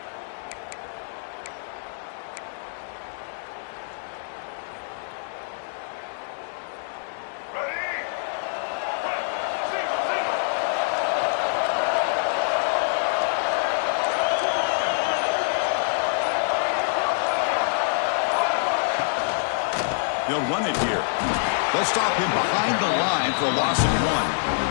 They'll run it here. They'll stop him behind the line for a loss of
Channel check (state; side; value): silent; right; digital silence